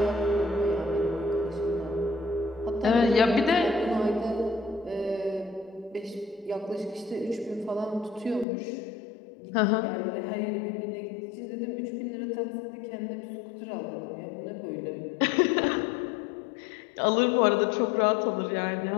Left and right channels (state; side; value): drops out; right; at 8.5 s